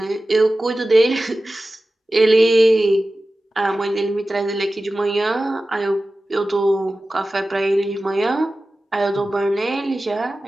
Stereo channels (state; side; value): normal; both; correlation 0.95